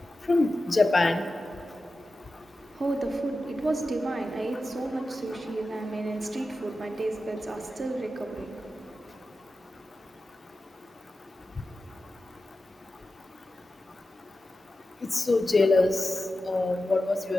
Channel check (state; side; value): normal; both; correlation 0.92